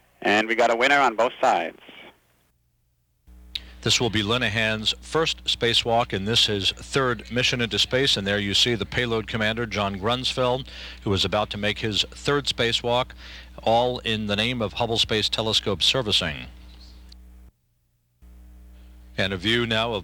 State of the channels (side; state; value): both; identical; correlation 1.00